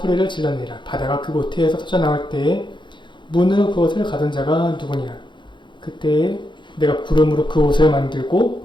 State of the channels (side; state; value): right; late; 0.23 ms